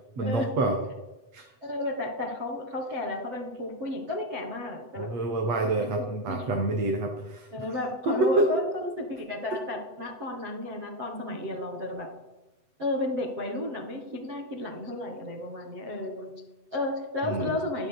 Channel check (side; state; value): left; late; 7.9 ms